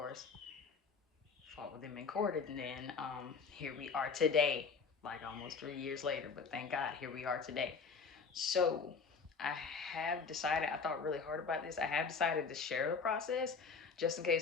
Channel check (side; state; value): right; quieter; 5.1 dB